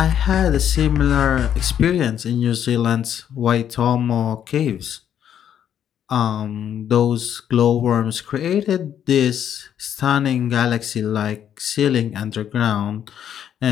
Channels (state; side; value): quieter; right; 9.6 dB